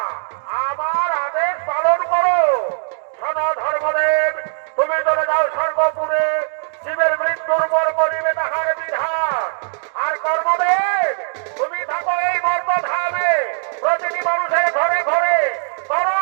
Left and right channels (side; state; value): left; silent; digital silence